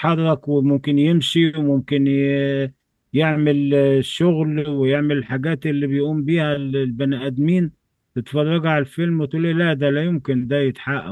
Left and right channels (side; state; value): both; identical; correlation 1.00